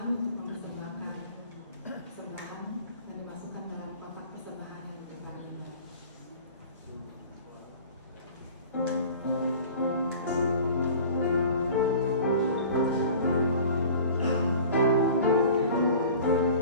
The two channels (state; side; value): inverted; both; correlation -0.43